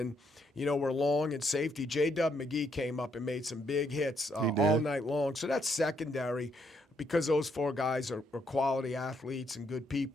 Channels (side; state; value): both; normal; correlation 0.73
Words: we're long in safety. J.W. McGee came up and made some big hits all night long. So that's secondary because those 4 guys are quality athletes and good